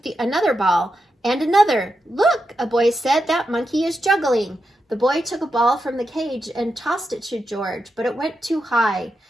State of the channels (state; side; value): normal; both; correlation 0.87